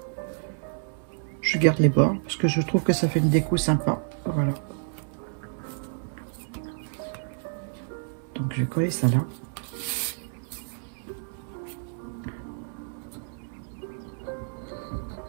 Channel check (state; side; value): silent; left; 59 dB below the other